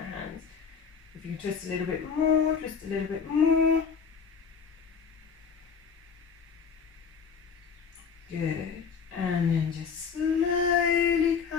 If you twist a little bit more, twist a little bit more. Good. And then just slowly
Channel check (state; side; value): quieter; right; 6.1 dB